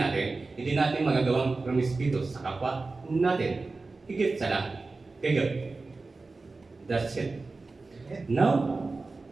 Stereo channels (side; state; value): left; quieter; 3.7 dB